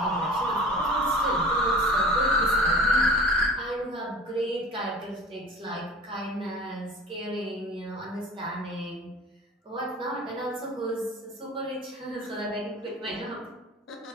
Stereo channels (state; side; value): normal; both; correlation 0.40